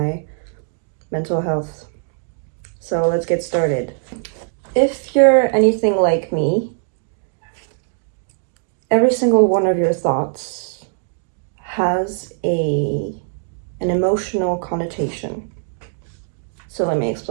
mental health. So let's get started. If you're anything like me, every single one of your thoughts has an emotional connotation. So let me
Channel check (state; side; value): silent; left; digital silence